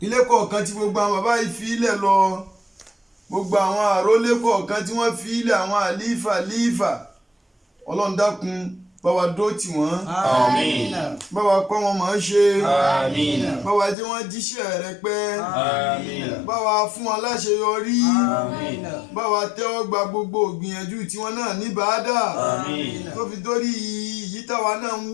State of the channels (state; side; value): drops out; right; at 14.0 s